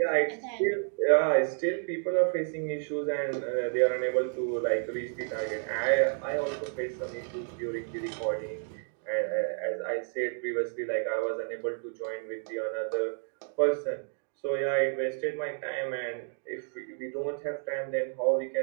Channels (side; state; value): left; silent; 57 dB below the other